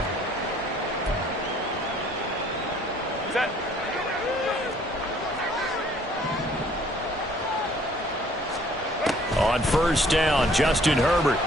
On first down, Justin Herbert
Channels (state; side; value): normal; both; correlation 0.59